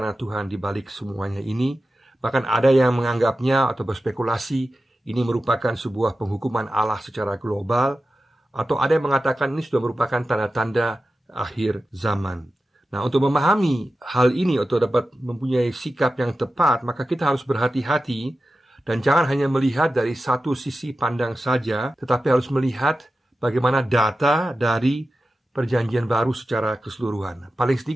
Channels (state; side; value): normal; both; correlation 0.93